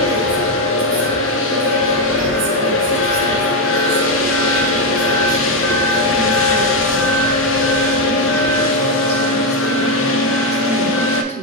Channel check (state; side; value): normal; both; correlation 0.06